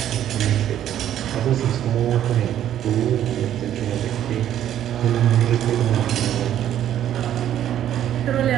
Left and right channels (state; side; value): quieter; left; 11.1 dB